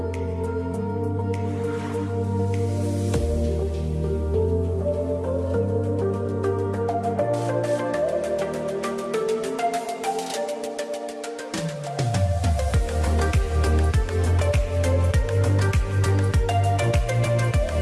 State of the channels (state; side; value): identical; both; correlation 1.00